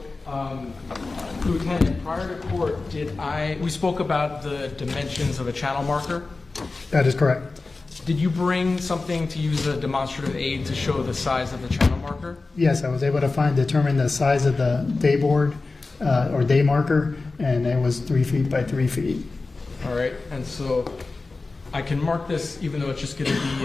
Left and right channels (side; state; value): right; quieter; 3.6 dB